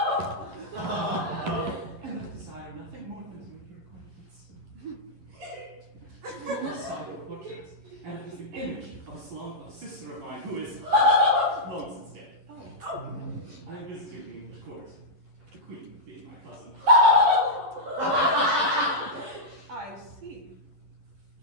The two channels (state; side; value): late; left; 11 ms